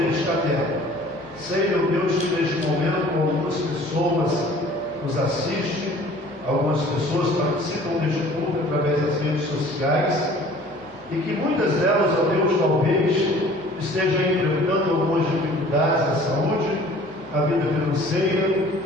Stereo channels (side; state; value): both; normal; correlation 0.50